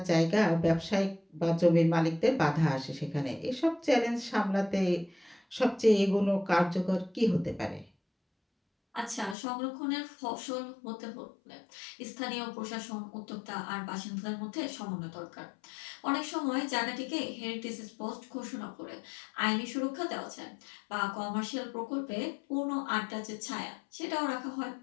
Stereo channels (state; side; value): drops out; right; at 9.3 s